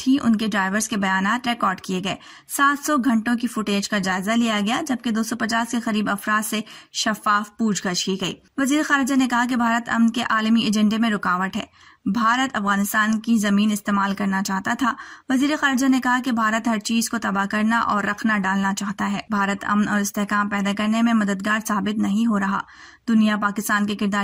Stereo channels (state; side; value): identical; both; correlation 1.00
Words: ان کے ڈرائیورز کے بیانات ریکارڈ کیے گئے. 700 گھنٹوں کی فوٹیج کا جائزہ لیا گیا جبکہ 250 کے قریب افراد سے شفاف پوچھ گچھ کی گئی. وزیر خارجہ نے کہا کہ بھارت امن کے عالمی ایجنڈے میں رکاوٹ ہے. بھارت افغانستان کی زمین استعمال کرنا چاہتا تھا. وزیر خارجہ نے کہا کہ بھارت ہر چیز کو تباہ کرنا اور رکھنا ڈالنا چاہتا ہے. بھارت امن اور استحکام پیدا کرنے میں مددگار ثابت نہیں ہو رہا. دنیا پاکستان کے